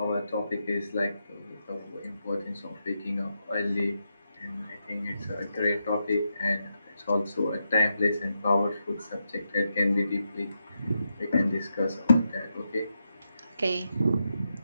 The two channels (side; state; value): both; inverted; correlation -0.85